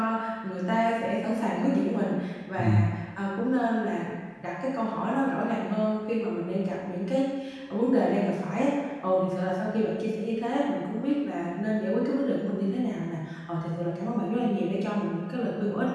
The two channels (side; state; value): both; identical; correlation 1.00